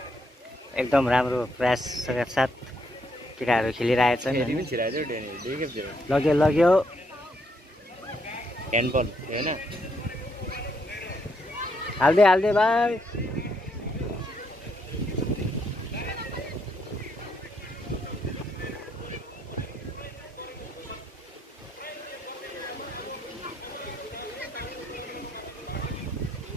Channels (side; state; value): both; normal; correlation 0.75